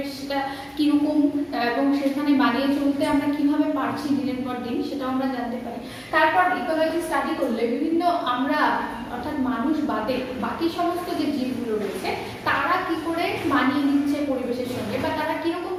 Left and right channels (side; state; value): both; identical; correlation 1.00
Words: কিরকম এবং সেখানে মানিয়ে চলতে আমরা কিভাবে পারছি দিনের পর দিন সেটাও আমরা জানতে পারি। তারপর ইকোলজি স্টাডি করলে বিভিন্ন আমরা অর্থাৎ মানুষ বাদে বাকি সমস্ত যে জীবগুলো রয়েছে তারা কি করে মানিয়ে নিচ্ছে পরিবেশের সঙ্গে, বা তারা কিরকম